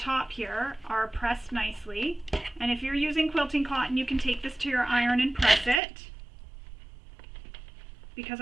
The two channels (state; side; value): drops out; left; at 5.8 s